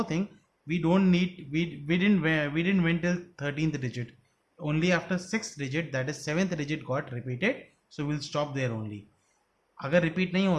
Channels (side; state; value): both; identical; correlation 1.00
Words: thing, we didn't went till 13th digit. Only after 6th digit, that is 7th digit, got repeated. So we'll stop there only. अगर repeat नहीं